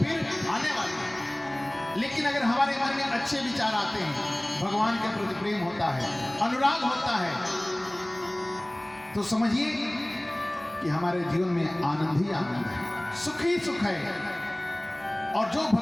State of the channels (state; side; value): noise; right; hum, 26 dB below the sound